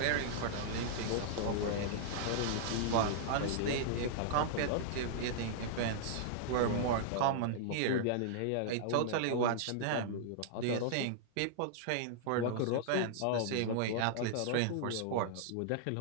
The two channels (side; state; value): both; different; correlation -0.01